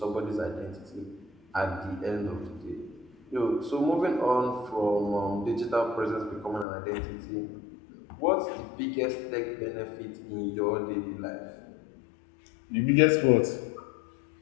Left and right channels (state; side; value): drops out; right; at 6.7 s